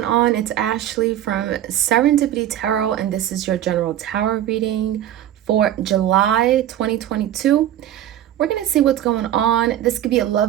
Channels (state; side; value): quieter; left; 11.9 dB